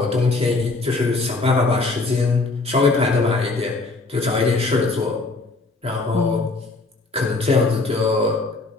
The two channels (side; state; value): right; quieter; 3.5 dB